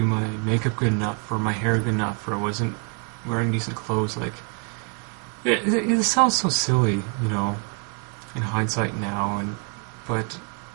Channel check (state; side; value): quieter; left; 34.5 dB